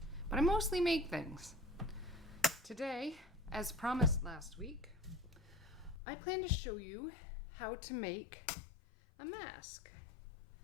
I mostly make things. Today, as promised last week, I plan to show you how to make a mask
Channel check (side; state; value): right; drops out; at 6.0 s